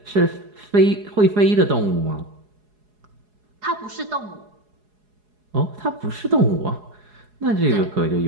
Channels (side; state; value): left; late; 4.8 ms